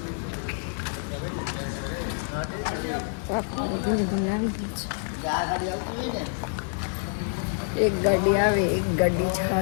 ધીરે ધીરે આવી ગઈ છે. એક ગાડી આવે, એક ગાડી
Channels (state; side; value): silent; right; 60 dB below the other